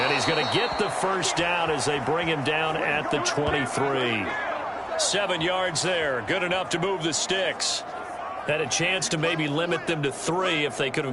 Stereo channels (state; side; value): identical; both; correlation 1.00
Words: he's going to get the first down as they bring him down at the 23. 7 yards there. Good enough to move the sticks. Had a chance to maybe limit them to 3 if they could